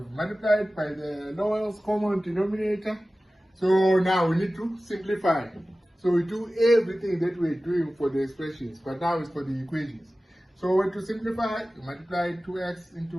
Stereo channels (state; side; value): normal; both; correlation 0.96